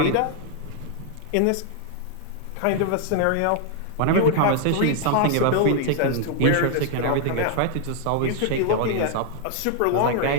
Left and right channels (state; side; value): different; both; correlation 0.00